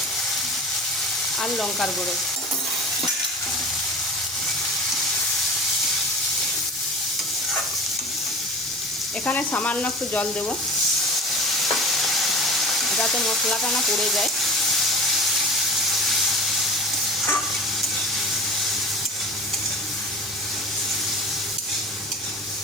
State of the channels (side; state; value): both; normal; correlation 0.36